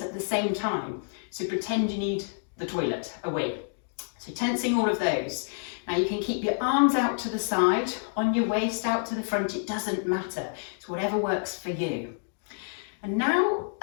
at the same time. So pretend you need the toilet away. So tensing all of those. Now you can keep your arms out to the side, on your waist, out to the front, it doesn't matter. It's whatever works for you. And now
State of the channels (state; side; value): silent; right; digital silence